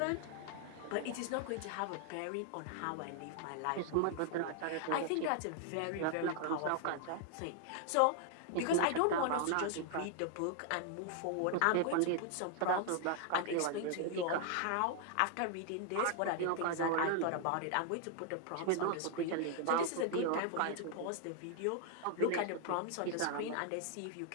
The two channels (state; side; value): different; both; correlation 0.00